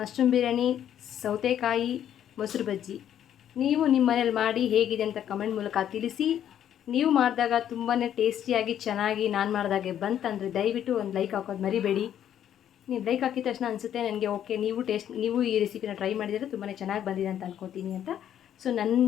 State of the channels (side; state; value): right; quieter; 10.2 dB